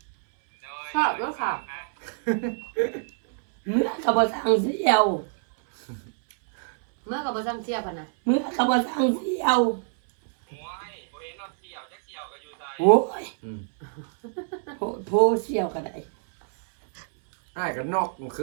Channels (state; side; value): silent; left; 61 dB below the other